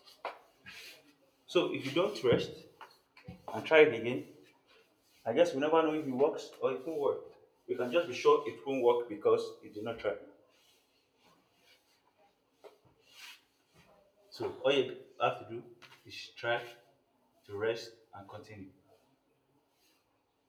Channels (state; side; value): identical; both; correlation 1.00